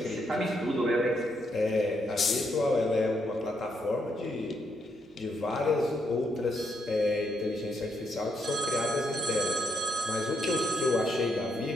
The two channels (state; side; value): normal; both; correlation 0.77